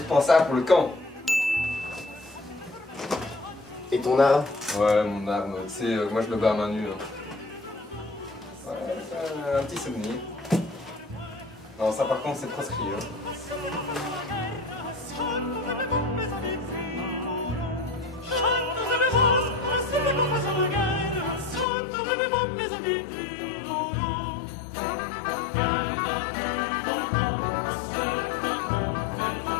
pour le camp. Et ton arme? Ouais, mon arme, tu sais, moi je me bats à main nue. Hein. Ouais, un petit souvenir. Non, ça par contre c'est proscrit. Hein.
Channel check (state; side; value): drops out; right; at 21.7 s